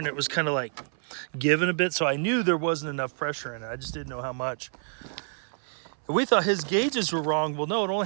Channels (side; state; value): left; silent; 57 dB below the other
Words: it was kind of like giving a bit, so I knew there wasn't enough pressure in it. I just didn't know how much. And we thought his gauges were wrong. Well, no, it